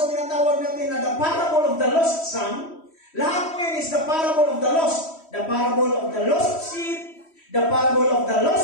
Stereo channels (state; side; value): late; right; 3.1 ms